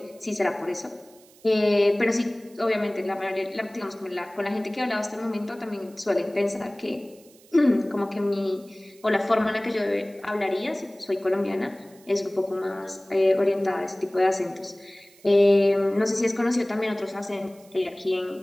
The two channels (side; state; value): right; noise; hiss, 27 dB below the sound